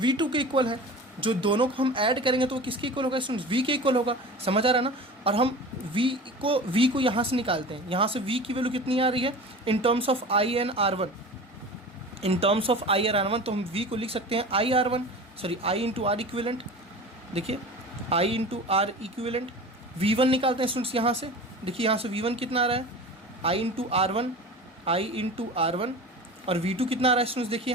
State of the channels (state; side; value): normal; both; correlation 0.35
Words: के इक्वल है। जो दोनों को हम ऐड करेंगे तो वो किसके इक्वल होगा स्टूडेंट्स, V के इक्वल होगा। समझ आ रहा है ना। और हम V को यहाँ से निकालते हैं, यहाँ से V की वैल्यू कितनी आ रही है in terms of I and R1, in terms of I और R1। तो हम V को लिख सकते हैं I इंटू R इक्विवेलेंट। देखिए I into R equivalent, V1 निकालते हैं स्टूडेंट्स यहाँ से। देखिए यहाँ से V1 कितना आ रहा है, I इंटू R1 और V2 कितना आ रहा है स्टूडेंट्स, देखिए